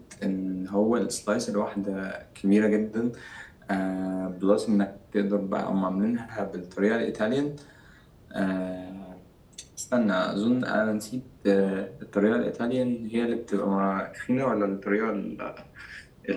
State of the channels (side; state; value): both; identical; correlation 1.00